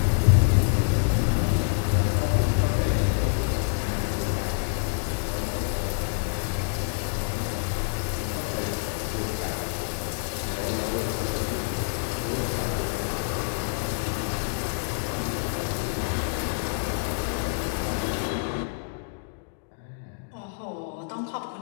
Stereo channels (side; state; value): right; silent; digital silence